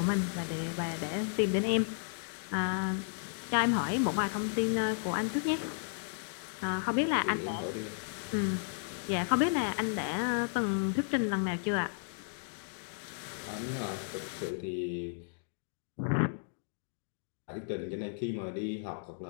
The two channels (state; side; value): silent; right; digital silence